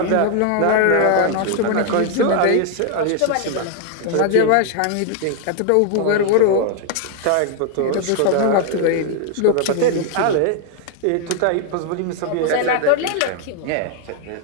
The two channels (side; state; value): both; different; correlation 0.00